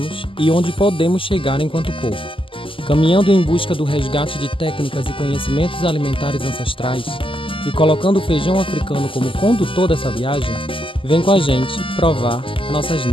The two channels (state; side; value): late; right; 0.25 ms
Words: e onde podemos chegar enquanto povo. Caminhando em busca do resgate de técnicas e conhecimentos alimentares ancestrais e colocando o feijão africano como condutor dessa viagem, vem com a gente provar nossas